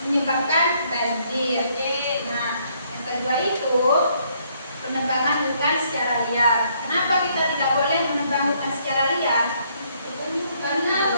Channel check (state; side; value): inverted; both; correlation -0.69